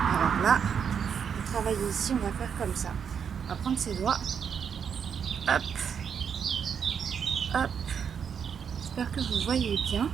Alors là, pour travailler ici, on va faire comme ça. On va prendre ses doigts. Hop, hop. J'espère que vous voyez bien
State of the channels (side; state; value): left; quieter; 7.3 dB